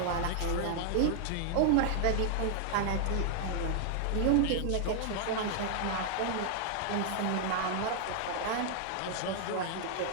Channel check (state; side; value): different; both; correlation -0.01